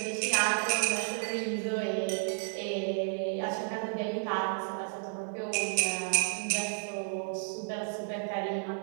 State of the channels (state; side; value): silent; left; digital silence